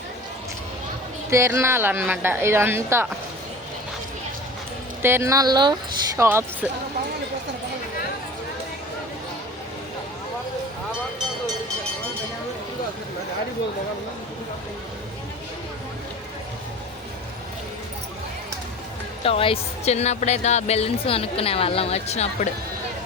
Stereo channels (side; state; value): both; normal; correlation 0.36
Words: తిరణాలు అన్నమాట ఇదంతా. తిరణాల్లో షాప్స్. టాయ్స్. చిన్నప్పుడైతే ఆ బెలూన్స్ కొనుక్కునే వాళ్ళం వచ్చినప్పుడు.